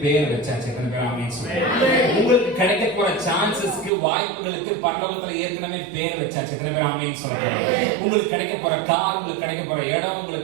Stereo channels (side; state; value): left; drops out; at 3.9 s